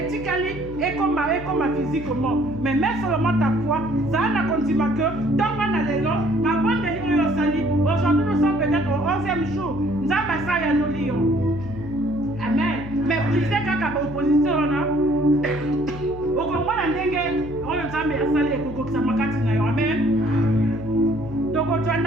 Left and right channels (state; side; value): noise; left; hum, 12 dB below the sound